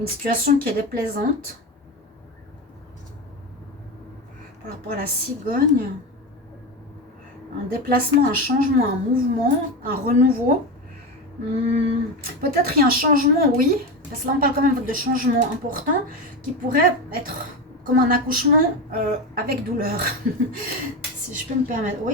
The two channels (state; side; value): normal; both; correlation 0.19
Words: situation qui est déplaisante par rapport à la cigogne, un déplacement, un changement, un mouvement, un renouveau. Peut-être il y a un changement, oui, parce que là on parle quand même de changement important qui pourrait être comme un accouchement avec douleur. Si je peux me permettre.